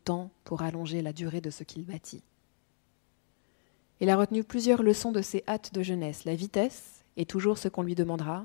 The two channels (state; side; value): silent; right; digital silence